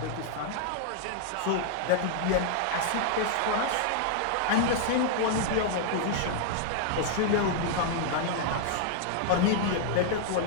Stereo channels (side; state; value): both; different; correlation 0.00